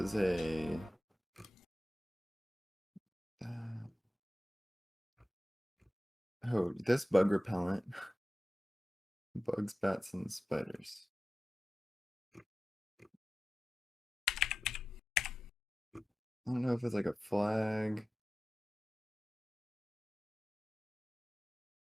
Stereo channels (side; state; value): both; normal; correlation 0.94